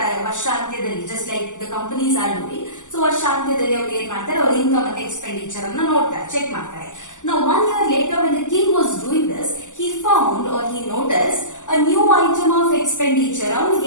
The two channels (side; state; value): right; late; 0.86 ms